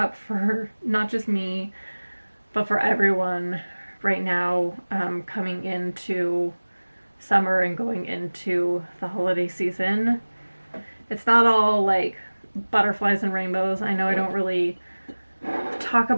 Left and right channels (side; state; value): both; inverted; correlation -1.00